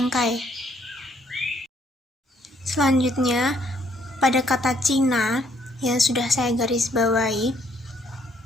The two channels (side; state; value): both; normal; correlation 0.67